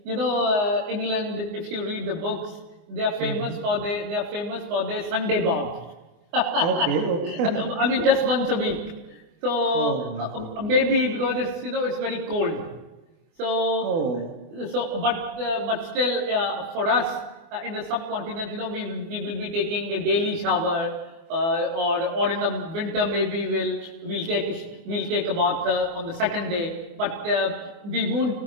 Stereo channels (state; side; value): late; left; 24 ms